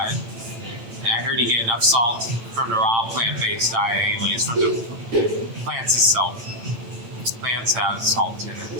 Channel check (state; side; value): late; left; 8.9 ms